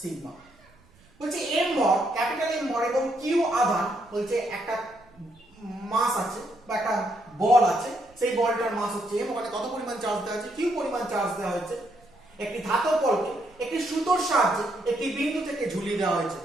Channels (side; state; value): right; noise; rumble, 29 dB below the sound